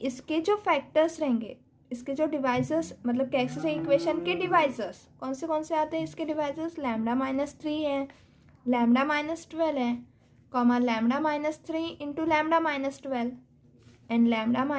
इसके जो फैक्टर्स रहेंगे, इसके जो डिवाइजर्स, मतलब कैरेक्टरिस्टिक इक्वेशन के डिवाइजर्स कौन से आते हैं, इसके डिवाइजर्स लैम्डा माइनस 3 है, लैम्डा माइनस 12 है, comma lambda minus 3 into lambda minus 12 and lambda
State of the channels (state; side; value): identical; both; correlation 1.00